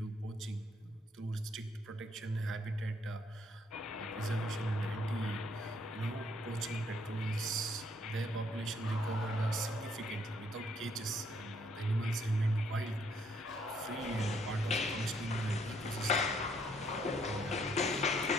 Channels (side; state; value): both; normal; correlation 0.68